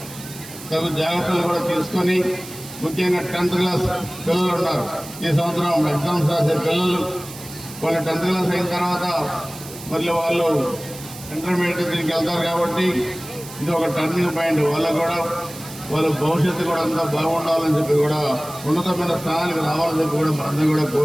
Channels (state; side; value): noise; right; hiss, 15 dB below the sound